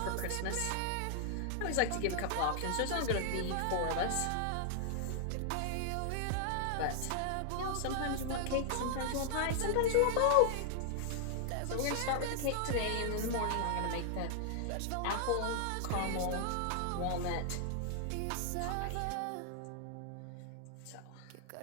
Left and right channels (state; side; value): different; both; correlation -0.01